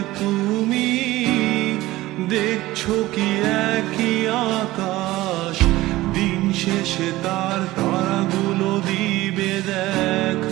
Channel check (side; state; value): left; quieter; 17.7 dB